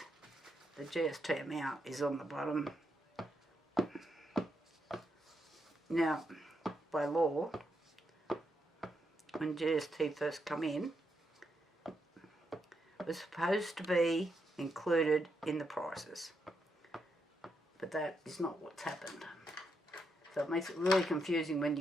the GST amount is on the bottom. Now, by law, when GST first come in, it was supposed to be included in the prices, but that is not what's happened. So it makes it really confusing when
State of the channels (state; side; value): normal; both; correlation 0.81